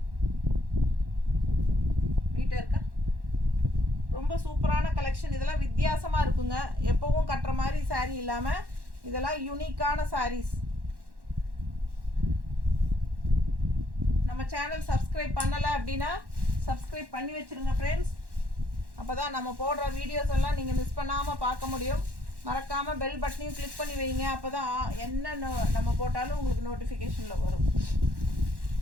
நீட்டாக இருக்கா? ரொம்ப சூப்பரான கலெக்ஷன். இதெல்லாம் வித்தியாசமாக இருக்குங்க. எப்போவும் கட்டுற மாதிரி saree இல்லாமல் இதெல்லாம் யூனிக்கான sarees. நம்ம சேனல் சப்ஸ்கிரைப் பண்ணலை அப்படின்னா சப்ஸ்கிரைப் பண்ணி வச்சுருங்க ஃப்ரெண்ட்ஸ். அப்போ தான் நம்ம போடுற வீடியோஸ் எல்லாம் நீங்கள் மிஸ் பண்ணாமல் பார்க்க முடியும். மறக்காமல் பெல் பட்டனையும் கிளிக் பண்ணி வைங்க. அப்போ தான் என்ன நம்ம போட்டாலும் உங்களுக்கு நோட்டிஃபிகேஷனில் வரும்.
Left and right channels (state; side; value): late; left; 1.1 ms